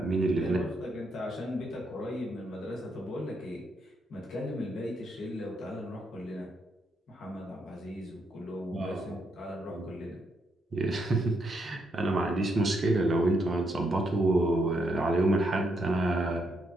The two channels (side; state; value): both; normal; correlation 0.78